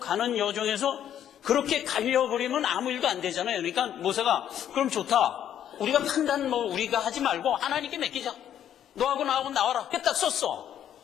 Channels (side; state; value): right; quieter; 10.2 dB